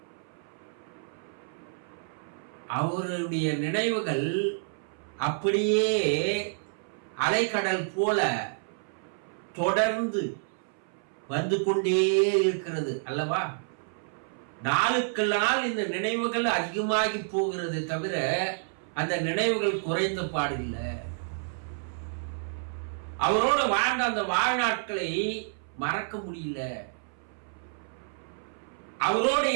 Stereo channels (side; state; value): left; silent; 58 dB below the other